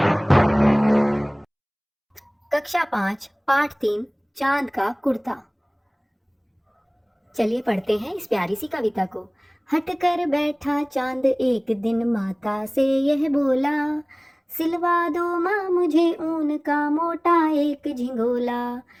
कक्षा 5 पाठ 3 चांद का कुर्ता। चलिए पढ़ते हैं इस प्यारी सी कविता को। हट कर बैठा चांद एक दिन माता से यह बोला, सिलवा दो माँ मुझे ऊन का मोटा एक झिंगोला।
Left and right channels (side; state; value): both; identical; correlation 1.00